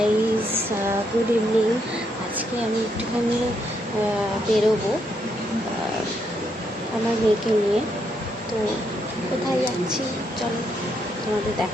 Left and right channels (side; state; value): both; normal; correlation 0.77